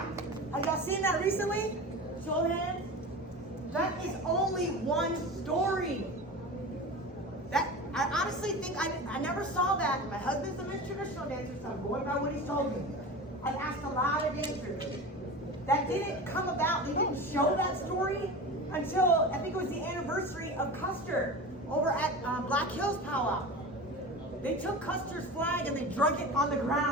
Have y'all seen that recently? Show of hands. That is only one story. I honestly think I never saw that. My husband's a traditional dancer, so I'm going by what he's told me. I've asked a lot of dancers. That didn't come about. They didn't show that story until I think it was the anniversary of Custer over at Black Hills Pow Wow. They took Custer's flag and they drug it on the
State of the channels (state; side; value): normal; both; correlation 0.30